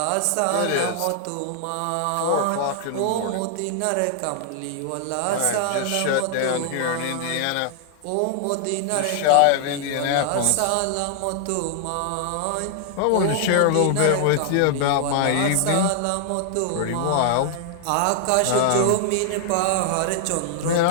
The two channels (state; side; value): different; both; correlation -0.01